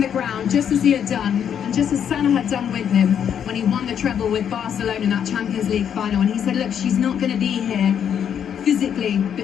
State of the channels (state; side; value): quieter; right; 8.6 dB